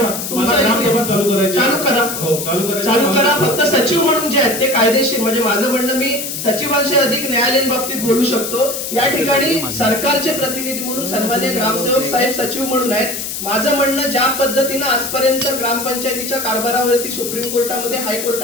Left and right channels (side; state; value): left; noise; hiss, 5 dB below the sound